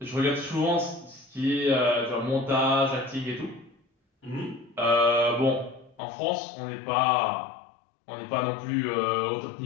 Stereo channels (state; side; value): drops out; right; at 6.0 s